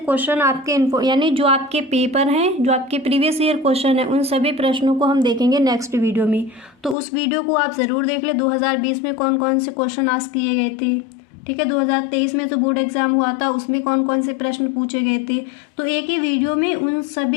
आपके यानी जो आपके पेपर हैं, जो आपके प्रीवियस ईयर क्वेश्चन है, उन सभी प्रश्नों को हम देखेंगे नेक्स्ट वीडियो में। तो उस वीडियो को आप ज़रूर देख ले। 2020 में कौन कौन से क्वेश्चन आज किए गए थे। ठीक है, 2023 में जो बोर्ड एग्जाम हुआ था उसमें कौन कौन से प्रश्न पूछे गए थे। तो एक ही वीडियो में उन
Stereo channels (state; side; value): drops out; right; at 7.0 s